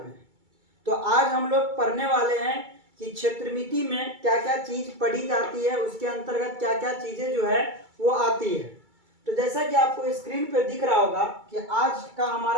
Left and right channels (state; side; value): late; left; 2.3 ms